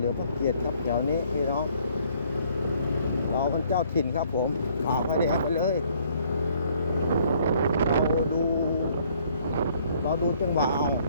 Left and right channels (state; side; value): inverted; both; correlation -0.63